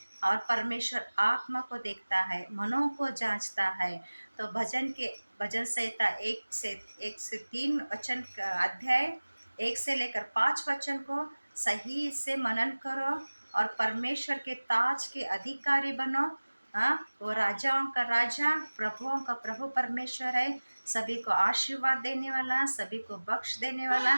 और परमेश्वर आत्मा को देखता है, मनों को जांचता है। तो भजन संहिता एक से 3 वचन का अध्याय 1 से लेकर 5 वचन को सही से मनन करो और परमेश्वर के ताज के अधिकारी बनो। हाँ, वो राजाओं का राजा, प्रभुओं का प्रभु परमेश्वर है। सभी को आशीर्वाद देने वाला, सभी को बख्श देने वाला,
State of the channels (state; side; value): inverted; both; correlation -1.00